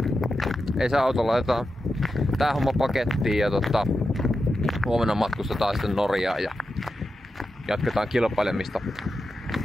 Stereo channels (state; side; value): normal; both; correlation 0.90